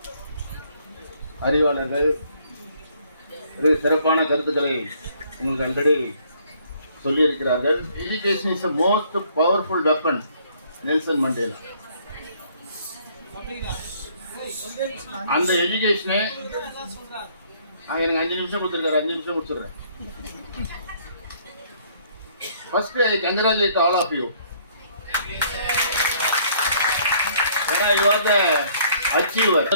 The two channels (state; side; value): inverted; both; correlation -0.62